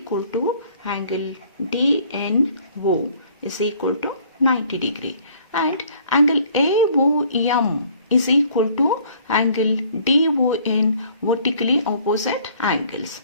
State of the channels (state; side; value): inverted; both; correlation -0.57